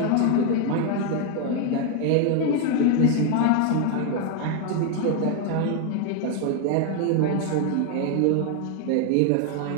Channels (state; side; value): different; both; correlation 0.01